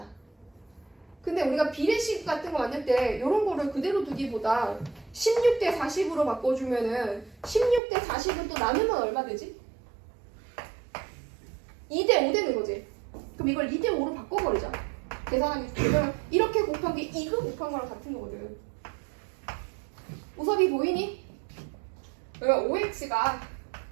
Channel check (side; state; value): left; drops out; at 7.8 s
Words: 근데 우리가 비례식 같은 거 만들 때 이런 거를 그대로 두기보다 16 대 40으로 바꿔주면은 16 대 40은 또 나누면 얼마 되지? 2대 5 되는 거지. 그럼 이걸 2대 5로 바꿔버리자. 계산하면 이렇게 곱한 게 이거 곱한 거랑 같은 거거든. 우섭이 보이니? 그러면 5x가